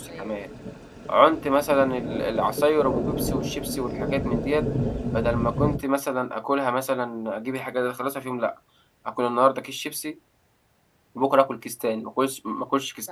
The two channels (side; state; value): both; identical; correlation 1.00